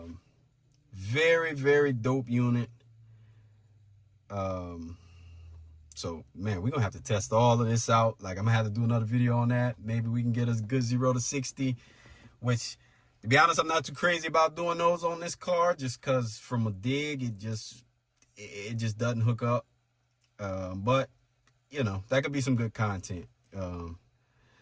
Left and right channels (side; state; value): both; identical; correlation 1.00